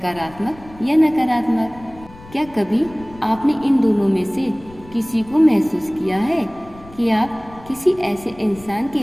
या नकारात्मक। क्या कभी आपने इन दोनों में से किसी को महसूस किया है कि आप किसी ऐसे इंसान के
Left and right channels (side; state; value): left; noise; rumble, 21 dB below the sound